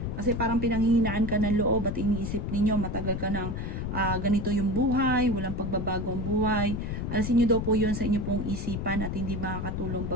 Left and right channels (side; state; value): left; noise; rumble, 3 dB below the sound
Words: Kasi parang pinanghihinaan ka ng loob at iniisip ninyo, matagal ka ng ganito yung buhay, walang pagbabago ang buhay. Alasin nyo daw po yun sa inyo pong isipan at hindi makakatulong